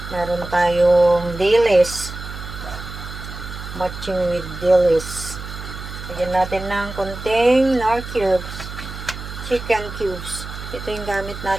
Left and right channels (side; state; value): right; noise; hum, 10 dB below the sound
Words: Meron tayong dilis, matching with dilis. Lagyan natin ng kunting nor cubes, chicken cubes. Ito yung gamit